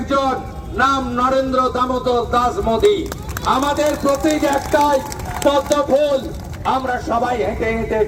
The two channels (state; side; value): identical; both; correlation 1.00